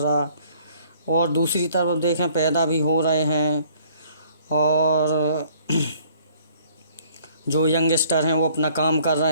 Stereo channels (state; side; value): inverted; both; correlation -0.58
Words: और दूसरी तरफ देखें, पैदा भी हो रहे हैं। और जो यंगस्टर हैं वो अपना काम कर